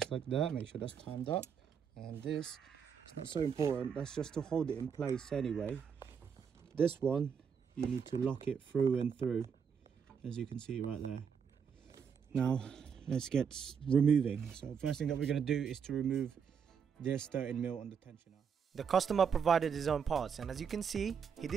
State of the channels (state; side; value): quieter; left; 6.9 dB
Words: like that. Make sure that's timed up. And this, it's not so important. That's just to hold it in place anyway. This one, you need to lock it through and through, as you can see right there. Now, let's get removing. So first thing that we're going to do is to remove this 13mm on the tensioner. The customer provided his own parts, and as you can see, he